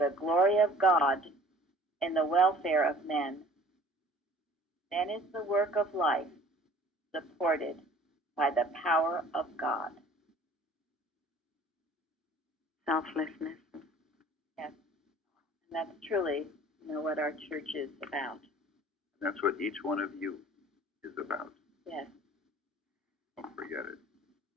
glory of God and the welfare of men. Then is the work of life supported by the power of God. Selflessness. Yes. And that's truly, what our church is about. That's what each one of you is about. Yes. Don't forget it.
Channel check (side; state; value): both; normal; correlation 0.50